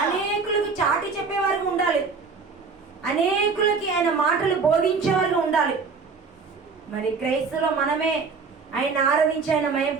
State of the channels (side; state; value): left; quieter; 4.9 dB